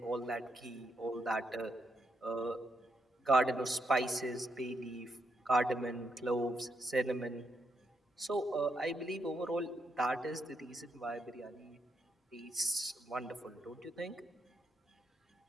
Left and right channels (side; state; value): both; normal; correlation 0.80